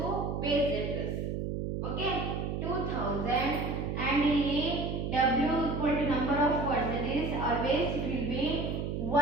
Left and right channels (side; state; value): right; noise; hum, 2 dB below the sound